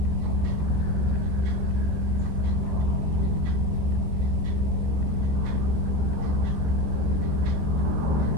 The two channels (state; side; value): late; left; 14 ms